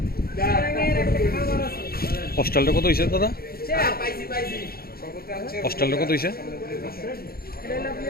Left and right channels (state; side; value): late; right; 0.44 ms